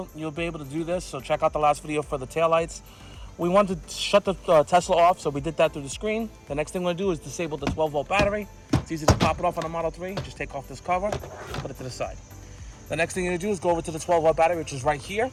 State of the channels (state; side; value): identical; both; correlation 1.00